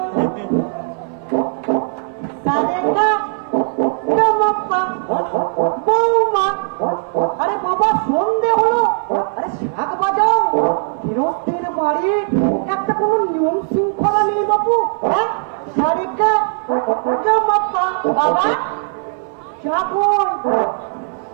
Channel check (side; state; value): left; silent; 61 dB below the other